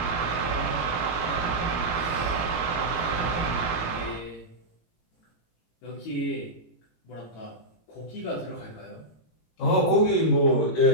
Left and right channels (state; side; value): late; right; 17 ms